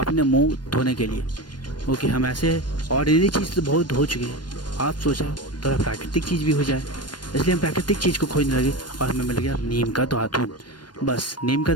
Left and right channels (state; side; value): late; right; 0.71 ms